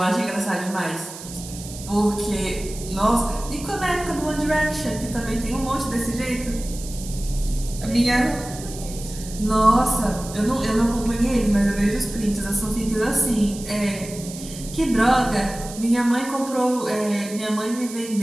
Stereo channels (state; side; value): noise; right; hiss, 13 dB below the sound